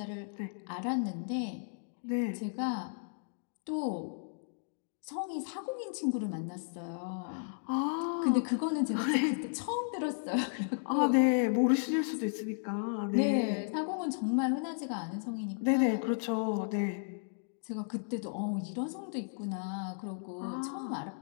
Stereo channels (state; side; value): silent; right; digital silence